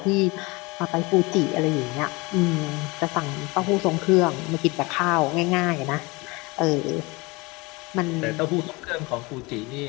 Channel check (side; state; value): right; quieter; 24.9 dB